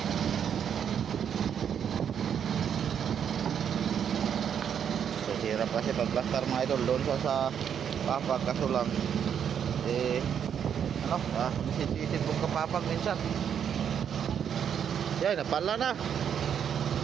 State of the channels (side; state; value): left; quieter; 8.3 dB